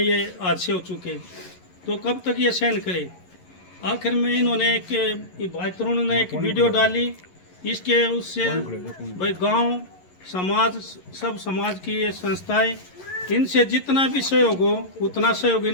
हादसे हो चुके, तो कब तक ये सहन करे। आखिर में इन्होंने भाई तरुण ने एक वीडियो डाली, इसके उससे भाई गांव समाज सब समाज की ये संस्थाएं इनसे जितना भी सहयोग हो उतना सहयोग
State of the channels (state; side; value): late; right; 11 ms